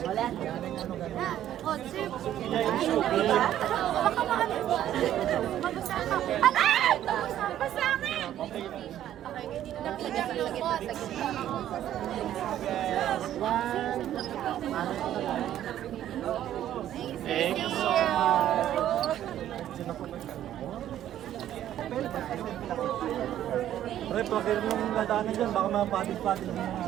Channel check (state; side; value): quieter; left; 11.8 dB